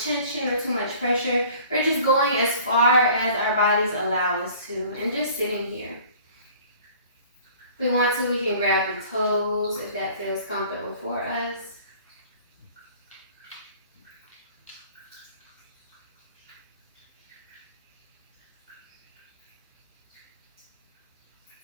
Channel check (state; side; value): inverted; both; correlation -0.49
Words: or too much pressure. We're just going as far as our bodies allow us to, and just sitting here. If we want to, we can grab the toes if that feels comfortable for us.